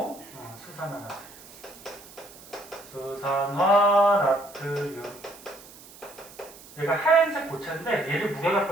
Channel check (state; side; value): noise; right; hiss, 20 dB below the sound